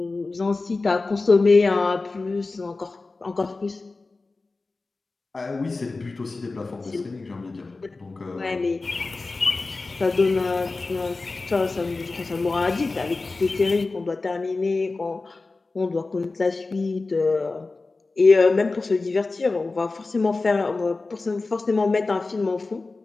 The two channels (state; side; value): quieter; right; 3.6 dB